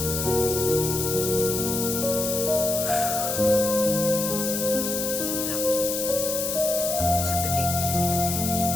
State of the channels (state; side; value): noise; left; hiss, 2 dB below the sound